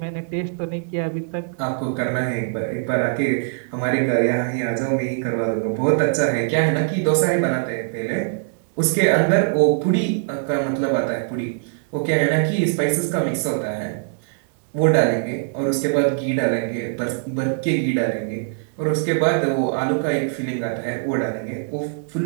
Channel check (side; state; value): left; silent; digital silence